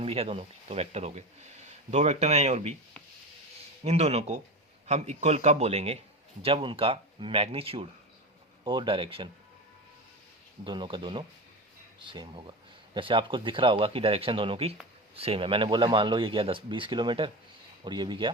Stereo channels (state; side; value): normal; both; correlation 0.24